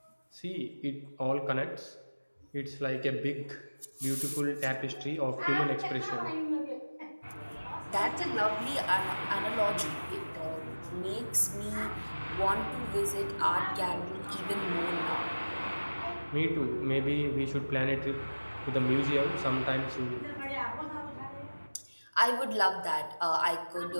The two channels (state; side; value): inverted; both; correlation -1.00